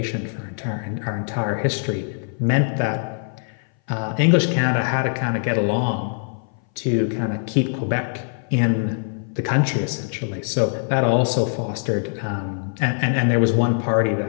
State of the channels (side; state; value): right; silent; 59 dB below the other